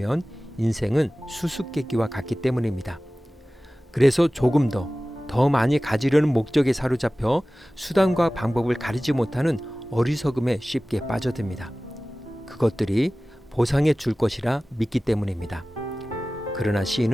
인생은 수수께끼와 같기 때문입니다. 그래서 조금 더 많이 가지려는 목적에 사로잡혀 수단과 방법을 가리지 못하는 어리석음에 쉽게 빠져듭니다. 그것들이 보상해 줄 것이라 믿기 때문입니다. 그러나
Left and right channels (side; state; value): both; normal; correlation 0.97